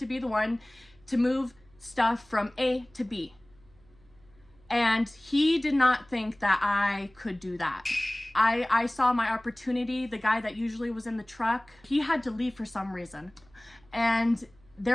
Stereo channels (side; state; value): right; noise; hum, 29 dB below the sound